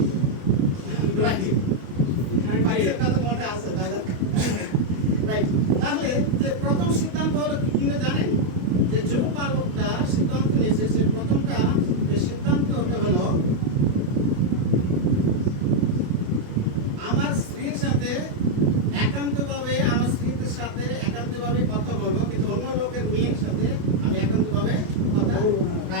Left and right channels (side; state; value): left; late; 28 ms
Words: পয়সার কথা মনে আছে দাদা, রাইট? তাহলে যে প্রথম সিদ্ধান্ত হলো কি কিনা জানেন? যে যুবপালকটা সিদ্ধান্ত নিয়েছে, সে প্রথমটা যে সিদ্ধান্তটা হলো আমার স্ত্রীর সাথে একান্তভাবে, আমার স্ত্রীর সাথে একান্তভাবে কথা বলবো, কিন্তু অন্য লোকের মেয়ের সাথে আমি একান্তভাবে কথা,